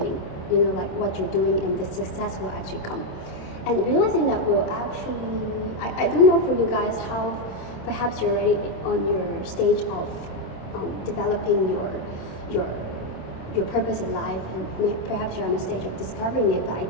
You know, like what you're doing, and the success will actually come. And realizing that will actually, I don't know for you guys how perhaps you're already on your stage of developing your purpose in life, and perhaps you're on a stage of discovering it, but I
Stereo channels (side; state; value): right; late; 26 ms